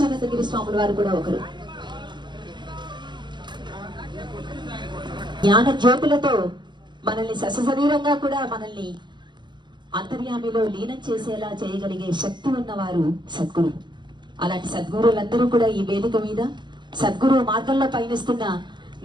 స్వాముల వారు కూడా ఒకరు. జ్ఞాన జ్యోతులతో మనల్ని సశరీరంగా కూడా మనల్ని అంతర్యామిలో లీనం చేసేలా చేయగలిగే శక్తి ఉన్నవారు సద్గురు. అలాంటి సద్గురులందరూ కూడా ఈ వేదిక మీద సద్గురు మార్గంలో పయనిస్తున్న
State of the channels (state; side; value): late; left; 0.22 ms